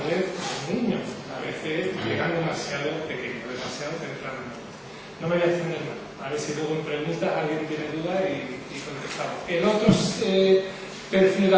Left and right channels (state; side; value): identical; both; correlation 1.00